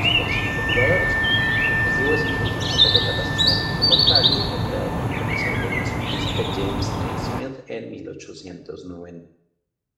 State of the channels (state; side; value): identical; both; correlation 1.00